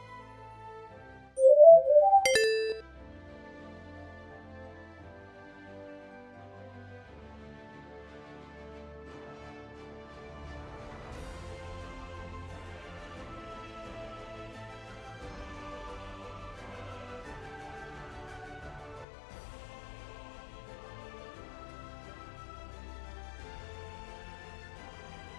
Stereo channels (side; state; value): right; drops out; at 19.1 s